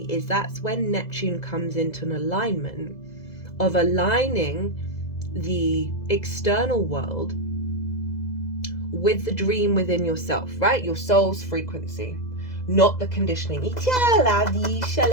is that's when Neptune comes into an alignment of aligning the external world with the dream within yourself, right? Your soul's frequency, not the conditioning.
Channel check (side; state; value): right; late; 2.0 ms